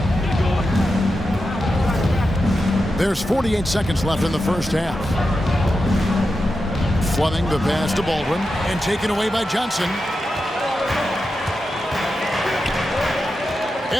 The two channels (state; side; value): normal; both; correlation 0.90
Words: There's 48 seconds left in the first half. Fleming the pass to Baldwin and taken away by Johnson.